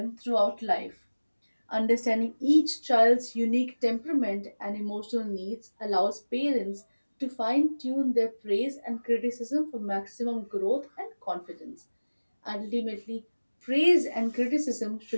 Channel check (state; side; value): inverted; both; correlation -1.00